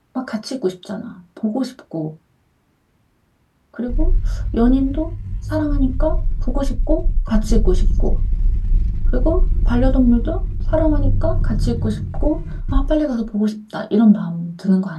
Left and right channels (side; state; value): both; identical; correlation 1.00